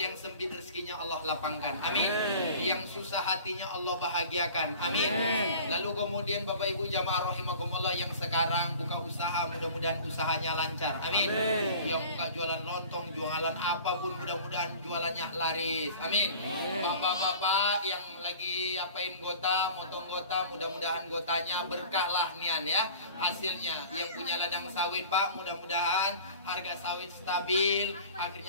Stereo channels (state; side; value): inverted; both; correlation -0.43